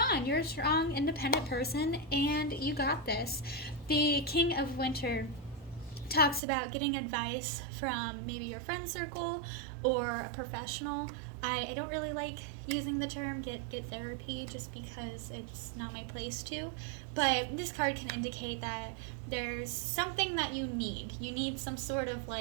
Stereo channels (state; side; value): drops out; left; at 6.4 s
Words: on. You're a strong, independent person, and you got this. The King of Winter talks about getting advice from maybe your friend circle or a professional. I don't really like using the term get therapy just because it's not my place to, but this card can indicate that there's something that you need. You need some sort of